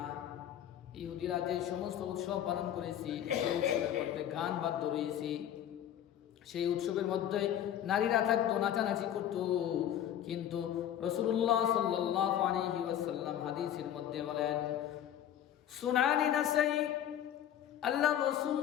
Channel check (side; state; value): right; quieter; 10.6 dB